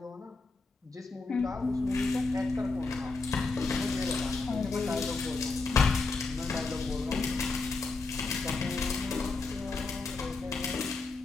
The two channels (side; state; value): right; quieter; 3.8 dB